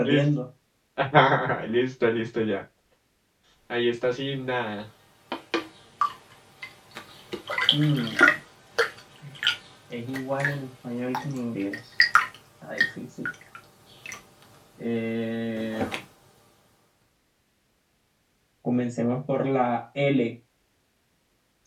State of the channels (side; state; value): both; identical; correlation 1.00